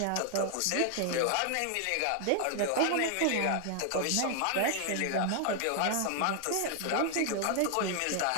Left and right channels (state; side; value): different; both; correlation 0.00